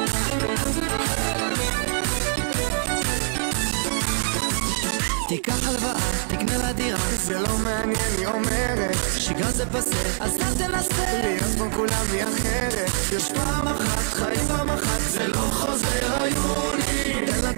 תיקח הלוואה, תקנה לה דירה, זה לא מעניין, היא אומרת שגרה זה פסה, אז אל תנסה להיות כמו כולם היא אחרת. יש פעם אחת, חיים פעם אחת, זה לא חוזר היוני. תן לה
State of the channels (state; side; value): silent; left; 63 dB below the other